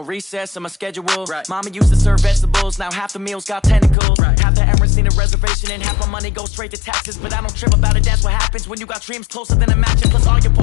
recess in my schedule. Mama used to serve vegetables, now half the meals got tentacles. Half the errands need a reservation and half my money goes straight to taxes. But I don't trip about it, that's what happens when you got dreams closer than a match. Plus all your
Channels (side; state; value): right; drops out; at 4.0 s